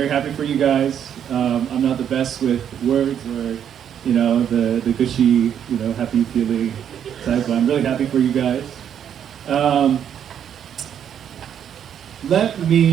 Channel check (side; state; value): left; quieter; 9.1 dB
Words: happy for you guys. I'm not the best with words or, the gushy, happy feeling type, but I'm really happy for you guys. Let